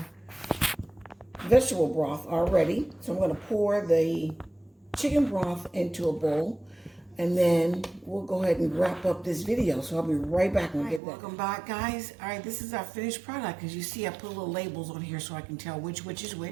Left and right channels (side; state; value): left; drops out; at 11.0 s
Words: vegetable broth already. So I'm going to pour the chicken broth into a bowl, and then we'll go ahead and wrap up this video. So I'll be right back when we get that. Welcome back, guys. All right, this is our finished product. As you see, I put little labels on here so I can tell which is